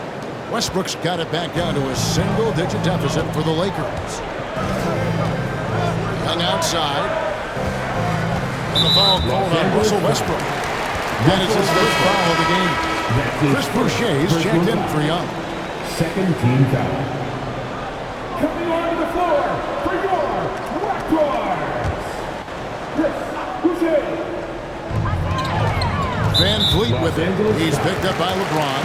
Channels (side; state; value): both; identical; correlation 1.00